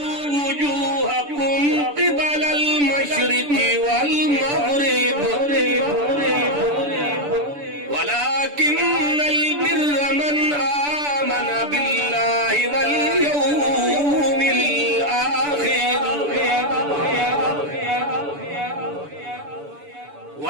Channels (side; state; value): left; late; 6.9 ms